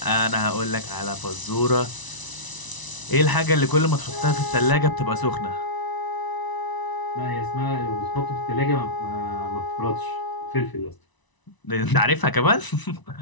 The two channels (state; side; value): late; right; 1.0 ms